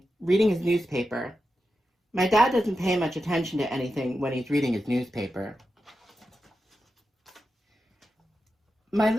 reading his newspaper. My dad doesn't pay much attention to anything when he's reading his newspaper. My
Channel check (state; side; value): normal; both; correlation 0.90